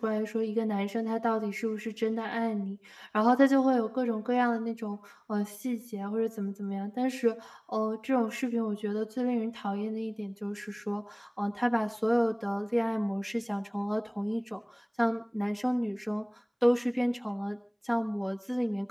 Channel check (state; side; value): identical; both; correlation 1.00